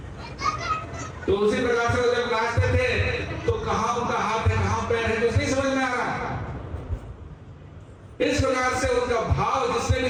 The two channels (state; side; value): identical; both; correlation 1.00